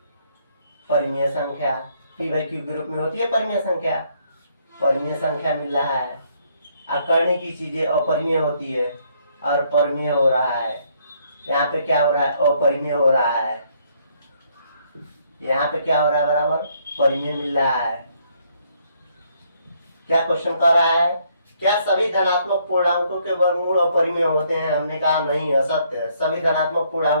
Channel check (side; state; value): both; inverted; correlation -0.69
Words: परिमेय संख्या, p/q ग्रुप में होती है परिमेय संख्या, परिमेय संख्या मिल रहा है। अकर्णी की चीजें अपरिमेय होती है और परिमेय हो रहा है। यहाँ पे क्या हो रहा है? अपरिमेय हो रहा है। यहाँ पे क्या हो रहा है? बराबर परिमेय मिल रहा है। क्या क्वेश्चन कर रहा है? क्या सभी धनात्मक पूर्णांकों के वर्गमूल अपरिमेय होते हैं? हमने कहा नहीं, असत्य है। सभी धनात्मक